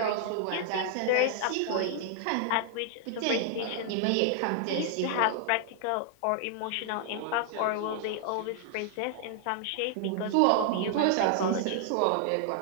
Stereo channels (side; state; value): both; different; correlation 0.00